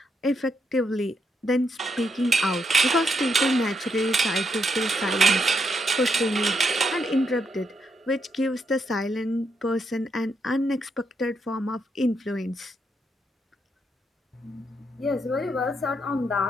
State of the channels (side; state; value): both; normal; correlation 0.78